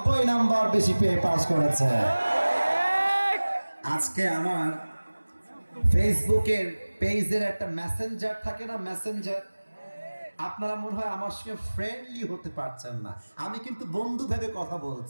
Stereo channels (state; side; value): inverted; both; correlation -1.00